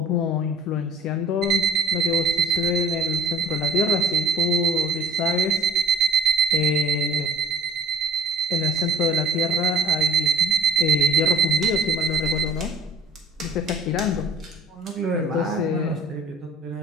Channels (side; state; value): both; normal; correlation 0.47